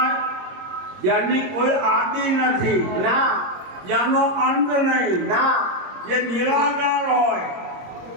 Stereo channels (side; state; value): left; late; 22 ms